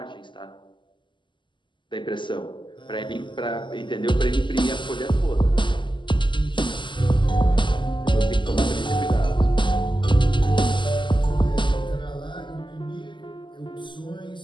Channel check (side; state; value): right; late; 0.23 ms